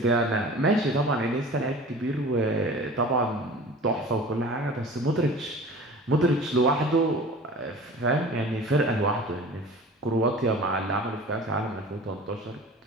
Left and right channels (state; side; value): normal; both; correlation 0.40